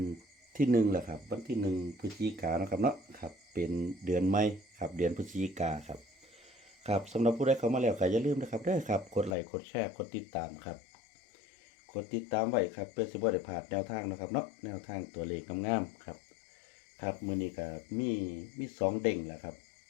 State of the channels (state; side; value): drops out; right; at 9.3 s